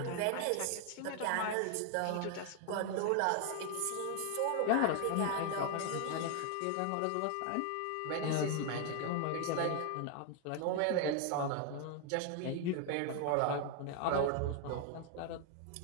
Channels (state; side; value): different; both; correlation 0.00